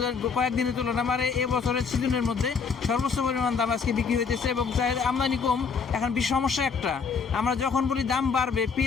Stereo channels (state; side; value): quieter; right; 5.6 dB